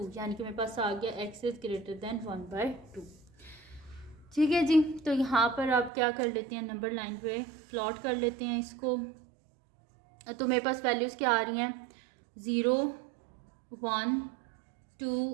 यानी कि मेरे पास आ गया x इज़ ग्रेटर दैन 1/2। ठीक है जी, तो यहाँ पर आप क्या कर लेते हैं, नंबर लाइन पे प्लॉट कर लेते हैं इसको। तो मेरे पास वैल्यूज़ क्या आ रही हैं, 0 1 2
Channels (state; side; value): drops out; left; at 5.9 s